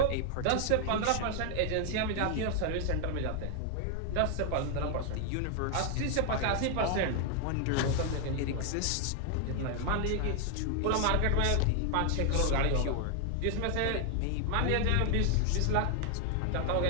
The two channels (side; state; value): both; different; correlation 0.00